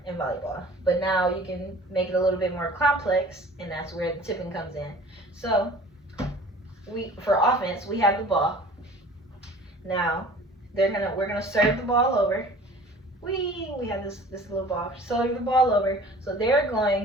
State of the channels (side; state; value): both; normal; correlation 0.46